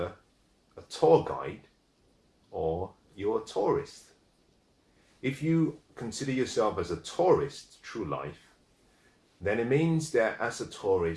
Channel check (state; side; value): identical; both; correlation 1.00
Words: a tour guide or you're a tourist. If you consider yourself as a tourist through life, then it means that as a